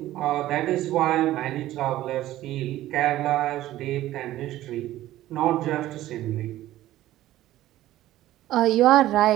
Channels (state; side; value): quieter; left; 14.7 dB